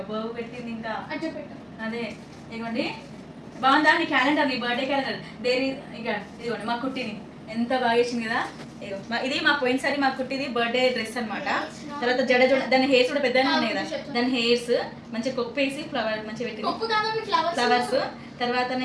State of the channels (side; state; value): both; identical; correlation 1.00